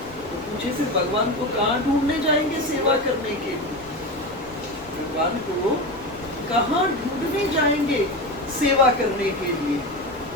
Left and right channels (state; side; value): noise; left; rumble, 21 dB below the sound